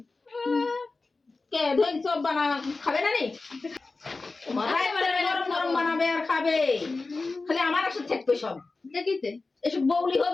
কে ধই সব বানা খাবে না নি মাথায় গরম গরম বানাবে আর খাবে খালি আমার সাথে থাকবে সব দেখিতে এসব বউলি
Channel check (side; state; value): right; quieter; 3.7 dB